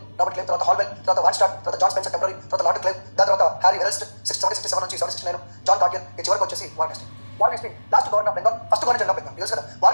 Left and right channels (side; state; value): both; inverted; correlation -1.00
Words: రాబర్ట్ క్లైవ్, తర్వాత హాల్వెల్, తర్వాత వాన్ స్టార్ట్, తర్వాత జాన్ స్పెన్సర్ టెంపరీ, తర్వాత లార్డ్ క్లైవ్, దాని తర్వాత హ్యారీ వెల్స్ట్ 1767 నుంచి 1769, జాన్ కార్డియర్, ఈ చివరికి వచ్చేసి warn Hastings. Warn Hastings last governor of Bengal, first governor general of Bengal. తెలుసు కదా,